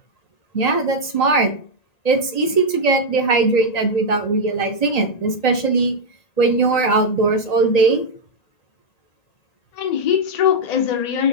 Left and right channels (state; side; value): late; right; 1.9 ms